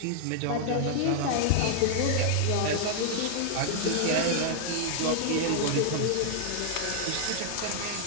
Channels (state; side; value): different; both; correlation -0.01